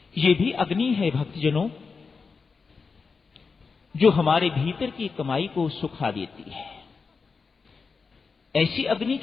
ये भी अग्नि है भक्तजनों, जो हमारे भीतर की कमाई को सुखा देती है। ऐसी अग्नि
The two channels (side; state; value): right; quieter; 4.9 dB